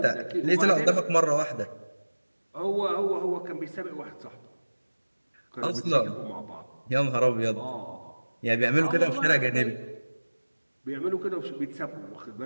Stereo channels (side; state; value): both; inverted; correlation -1.00